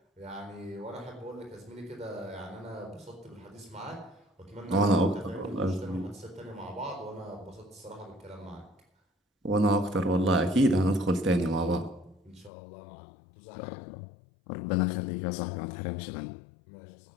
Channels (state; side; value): drops out; right; at 12.5 s